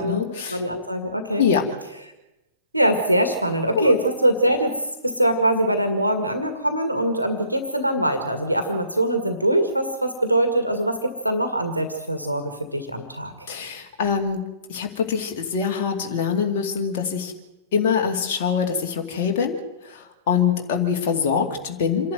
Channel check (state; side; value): inverted; both; correlation -0.54